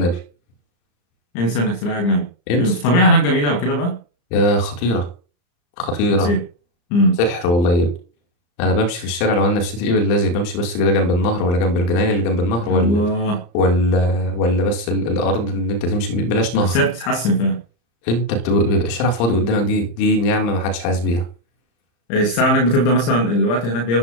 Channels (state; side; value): late; right; 34 ms